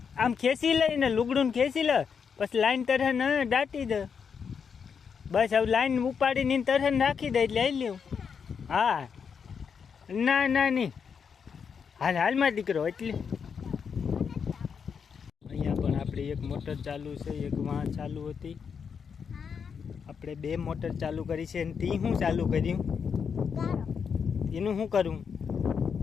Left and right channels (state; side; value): quieter; right; 6.5 dB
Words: આમ ખેંચી લઈને લુગડું ખેંચી લે, પછી લાઈન તરહન દાટી દે. બસ હવે લાઈન ઉપાડીને તરહન રાખી દે એટલે લઈ લ્યું. હા ના નહીં હાલમાં દીકરો. એટલે અહીંયા પણ આપણે એક મોટર ચાલુ છે, એક વાં ચાલુ હતી. આપણે બે મોટર ચાલુ કરી છે. અને તી શું ચાલુ કર્યું? એનું શું કરું?